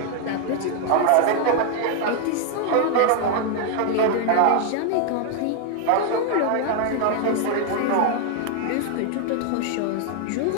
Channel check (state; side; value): different; both; correlation 0.00